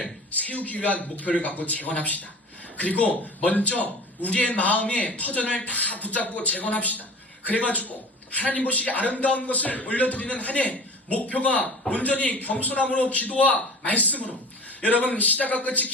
세우기 위한 목표를 갖고 재건합시다. 그리고 먼저 우리의 마음의 터전을 다 붙잡고 재건합시다. 그래가지고 하나님 보시기에 아름다운 것을 올려드리는 한 해 목표가 온전히 겸손함으로 기도와 말씀으로 여러분 시작과 끝이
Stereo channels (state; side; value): normal; both; correlation 0.39